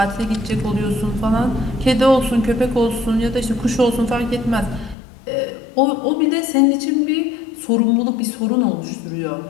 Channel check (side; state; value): right; drops out; at 5.0 s